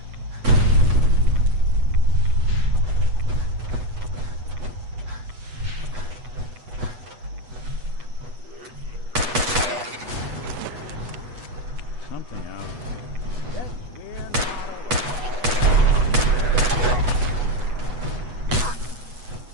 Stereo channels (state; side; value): late; left; 8.1 ms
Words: Something out there.